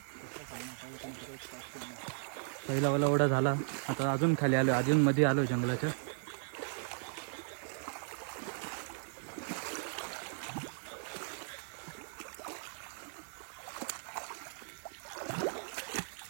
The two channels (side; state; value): left; silent; digital silence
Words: पहिला वाला ओढा झाला. आता अजून खाली आलो. अजून मध्ये आलोय जंगलाच्या.